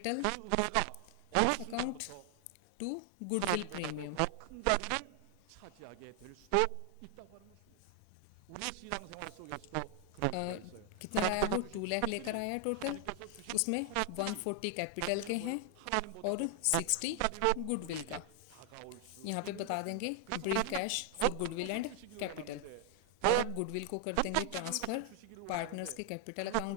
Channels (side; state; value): both; different; correlation 0.00